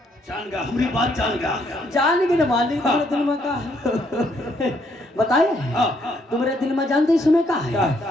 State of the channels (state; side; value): normal; both; correlation 0.71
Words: जान गया, हमारी बात जान गया। जान गए ना मालिक, तुम्हारे दिल में का है बताए? तुम्हारे दिल में जानते ही सुने का